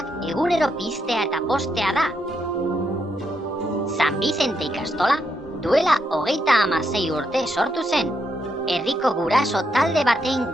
egunero piztea eta postea da. San Bizente ikastola duela 36 urte sortu zen, herriko guraso talde baten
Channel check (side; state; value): both; normal; correlation 0.79